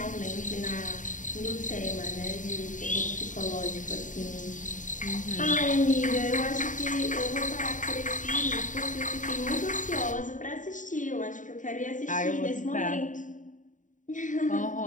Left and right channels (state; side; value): late; right; 0.37 ms